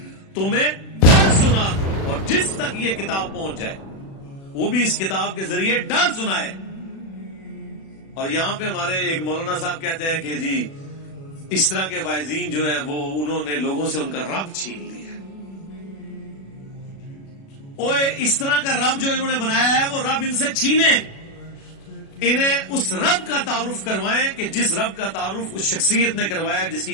تمہیں ڈر سنا دوں، اور جس تک یہ کتاب پہنچ جائے وہ بھی اس کتاب کے ذریعے ڈر سنائے. اور یہاں پہ ہمارے ایک مولانا صاحب کہتے ہیں کہ جی اس طرح کے واعظین جو ہیں وہ انہوں نے لوگوں سے ان کا رب چھین لیا. اوے اس طرح کا رب جو انہوں نے بنایا ہے وہ رب ان سے چھینے. انہیں اس رب کا تعارف کروائیں کہ جس رب کا تعارف اس شخصیت نے کروایا جس کی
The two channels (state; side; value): late; right; 36 ms